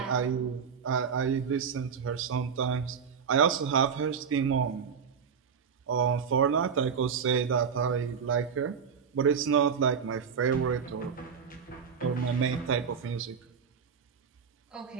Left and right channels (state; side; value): quieter; left; 6.6 dB